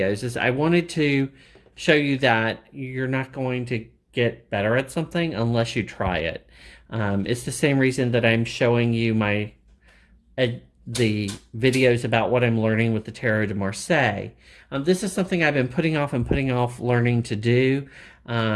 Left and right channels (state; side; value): identical; both; correlation 1.00